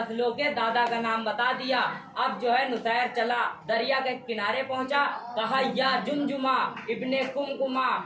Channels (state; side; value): identical; both; correlation 1.00